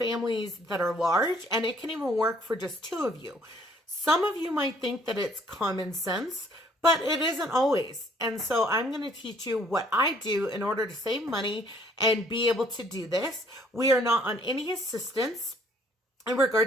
that are large, and it can even work for just 2 of you. Some of you might think that it's common sense, but it isn't always. And so I'm going to teach you what I do in order to save money and be able to do this. We are not on any assistance in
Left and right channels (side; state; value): both; normal; correlation 0.61